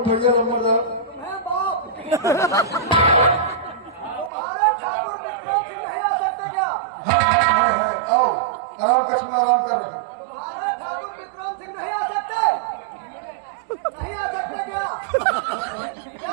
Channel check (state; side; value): drops out; left; at 4.3 s